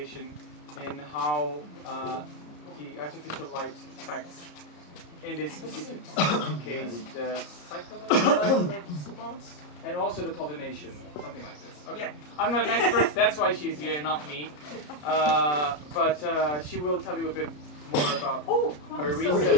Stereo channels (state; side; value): late; right; 33 ms